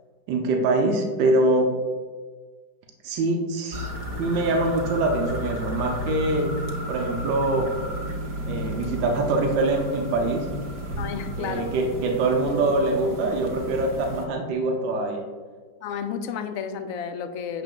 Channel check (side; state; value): left; late; 5.0 ms